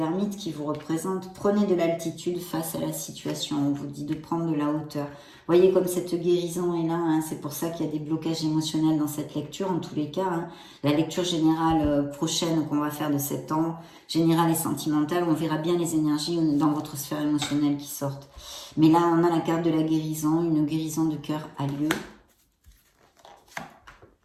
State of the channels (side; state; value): both; identical; correlation 1.00